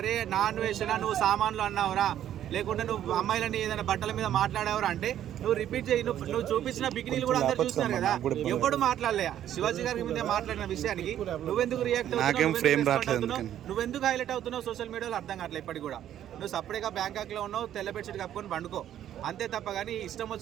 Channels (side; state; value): left; quieter; 11.1 dB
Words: నాన్ వేషనా నువ్వు సామాన్లు అన్నావురా, లేకుంటే నువ్వు అమ్మాయిలని ఏదైనా బట్టల మీద మాట్లాడావరా అంటే నువ్వు రిపీట్ చేయి. నువ్వు చూపించిన బికినీలు కూడా అందరు చూస్తున్నారు కదా, ఎవడు మాట్లాడలే శివాజీ గారి మీద మాట్లాడిన విషయానికి నువ్వెందుకు రియాక్ట్ అవుతున్నావు, నువ్వెందుకు హైలైట్ అవుతున్నావు సోషల్ మీడియాలో అర్థం కావట్లేదు. ఇప్పటికి కూడా నువ్వు సపరేట్గా బ్యాంకాక్లో ఉన్నావు, తెల్ల బెడ్షీట్ కప్పుకొని పండుకో అంతే తప్ప. కానీ ఇష్టం